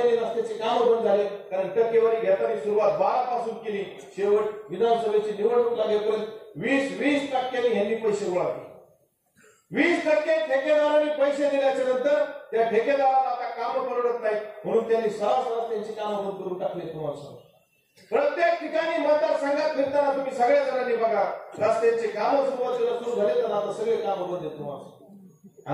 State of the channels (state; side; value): identical; both; correlation 1.00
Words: रस्त्याचे काम बंद झाले. कारण टक्केवारी घेताना सुरुवात 12 पासून केली, शेवट विधानसभेची निवडणूक लागेपर्यंत 20% यांनी पैसे गोळा केले. 20% ठेकेदारांनी पैसे दिल्याच्या नंतर त्या ठेकेदाराला आता काम परवडत नाही, म्हणून त्यांनी सरासर त्यांची कामं बंद करून टाकले. तुम्हाला सांगतो, प्रत्येक ठिकाणी मतदारसंघात फिरताना तुम्ही सगळ्या जणांनी बघा, रस्त्यांचे कामं सुरुवातीला सुरू झाले तर आता सगळे कामं बंद आहेत तुम्हाला.